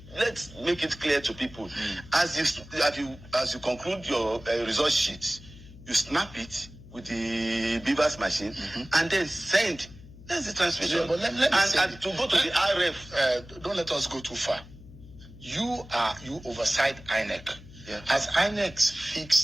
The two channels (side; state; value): left; noise; hum, 19 dB below the sound